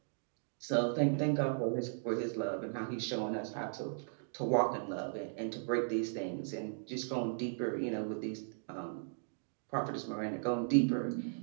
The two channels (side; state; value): left; silent; digital silence